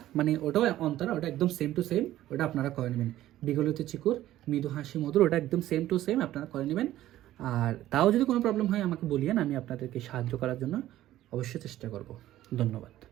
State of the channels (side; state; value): left; quieter; 14.0 dB